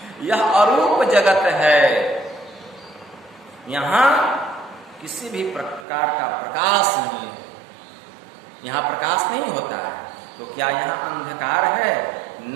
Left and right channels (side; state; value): left; drops out; at 5.9 s